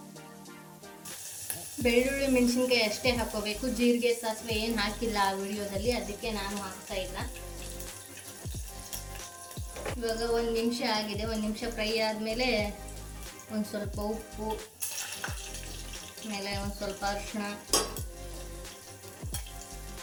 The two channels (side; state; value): both; identical; correlation 1.00